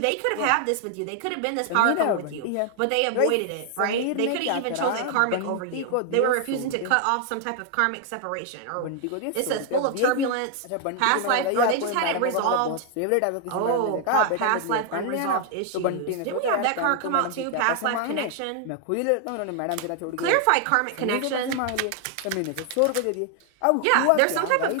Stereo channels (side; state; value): both; different; correlation 0.00